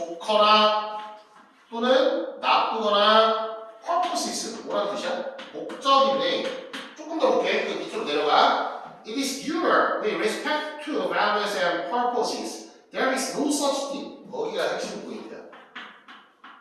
또는 나쁘거나 purposes. 뭐라는 뜻이야? 목적인데 조금 더 볼게. 그 밑으로 내려가. It is your with respect to values and purposes. There is no such thing. 거기가 핵심 포인트야.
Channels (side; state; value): both; identical; correlation 1.00